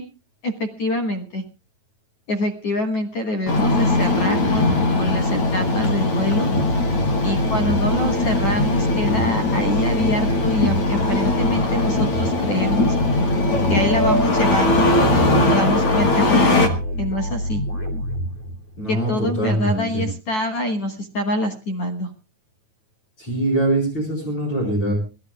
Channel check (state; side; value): late; right; 9.2 ms